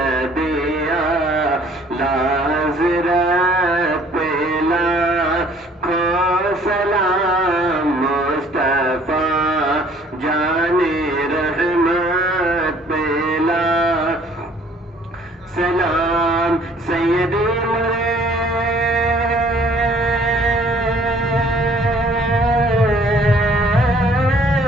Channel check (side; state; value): both; normal; correlation 0.57